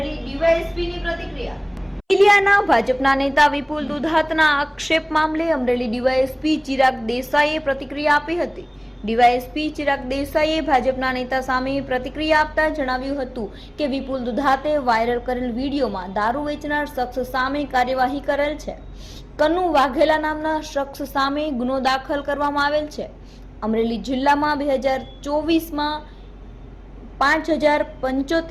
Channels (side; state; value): both; identical; correlation 1.00